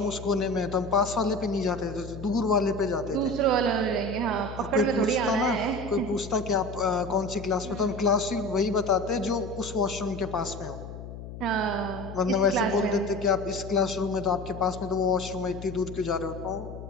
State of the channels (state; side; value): noise; left; hum, 11 dB below the sound